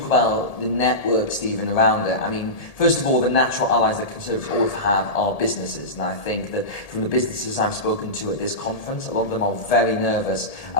about the network, Stephen, around it, I mean, first of all, the natural allies that Conservatives always have are businesses. And I think that from the businesses I've spoken to at this conference, a lot of them are very nervous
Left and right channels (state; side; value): late; right; 1.8 ms